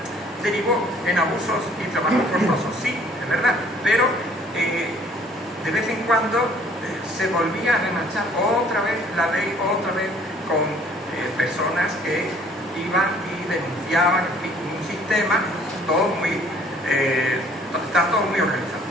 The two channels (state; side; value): normal; both; correlation 0.57